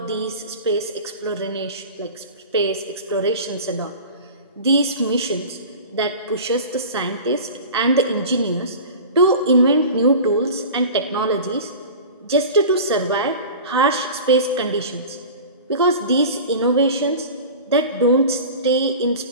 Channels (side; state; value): both; inverted; correlation -0.36